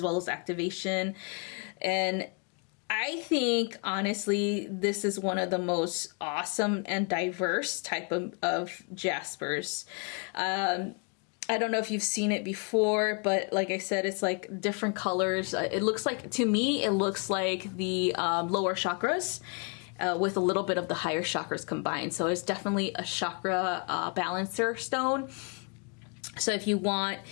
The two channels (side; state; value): right; quieter; 36.8 dB